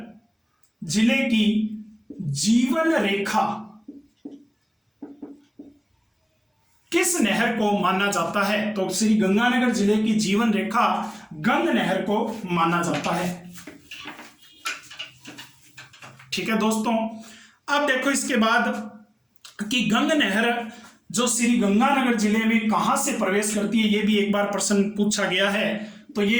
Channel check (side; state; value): both; identical; correlation 1.00